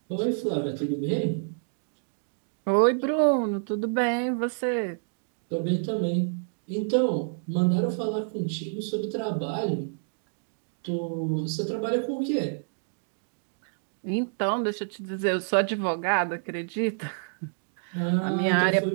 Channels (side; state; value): left; silent; digital silence